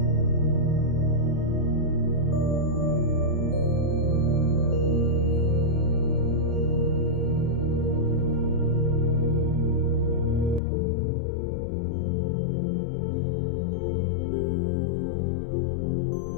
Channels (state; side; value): drops out; right; at 10.6 s